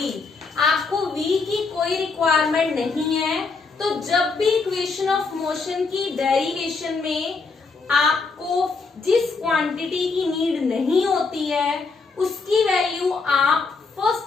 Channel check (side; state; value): right; quieter; 4.3 dB